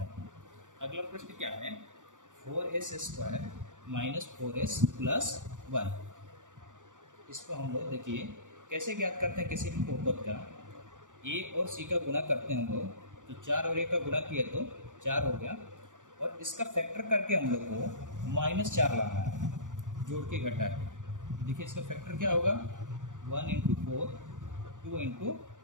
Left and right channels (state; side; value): late; left; 0.87 ms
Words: अगला प्रश्न क्या है, 4s² माइनस 4s प्लस 1। इसको हम लोग देखिए कैसे ज्ञात करते हैं किसी भी बहुपद का। a और c का गुणा करते हैं हम लोग, तो 4 और a का गुणा किया तो 4 हो गया और इसका फैक्टर करके हम लोग को -4 लाना है, जोड़ के घटा है। देखिए इसका फैक्टर क्या होगा 1 × 4 2 ×